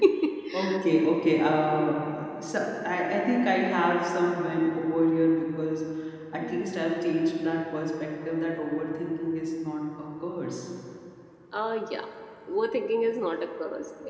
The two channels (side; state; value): both; identical; correlation 1.00